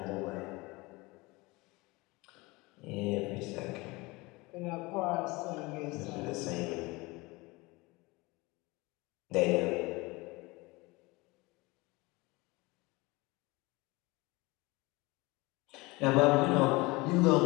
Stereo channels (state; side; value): quieter; right; 23.6 dB